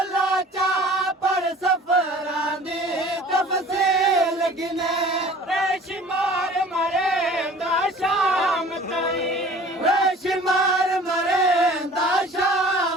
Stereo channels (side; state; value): both; normal; correlation 0.47